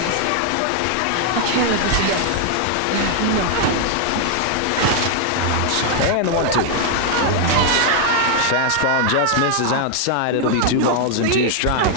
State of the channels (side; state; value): both; different; correlation 0.00